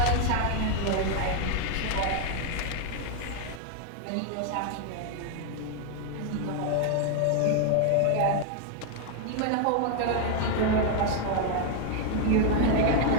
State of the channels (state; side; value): different; both; correlation 0.00